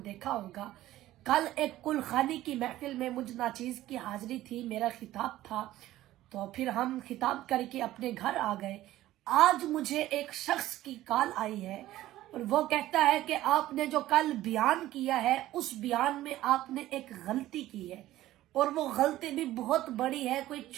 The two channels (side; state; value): left; quieter; 15.0 dB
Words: دیکھا ہوگا۔ کل ایک کل خانی کی محفل میں مجھ ناچیز کی حاضری تھی، میرا خطاب تھا، تو پھر ہم خطاب کر کے اپنے گھر آ گئے۔ آج مجھے ایک شخص کی کال آئی ہے اور وہ کہتا ہے کہ آپ نے جو کل بیان کیا ہے اس بیان میں آپ نے ایک غلطی کی ہے، اور وہ غلطی بھی بہت بڑی ہے، کوئی